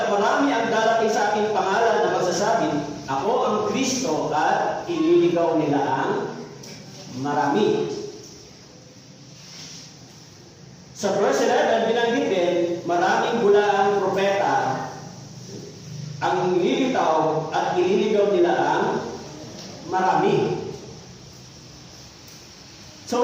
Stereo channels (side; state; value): both; identical; correlation 1.00